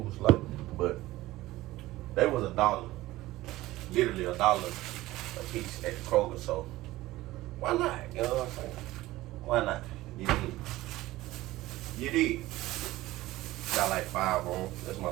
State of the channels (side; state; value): left; quieter; 17.4 dB